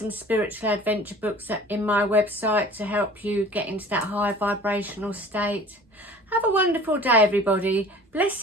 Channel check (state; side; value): normal; both; correlation 0.45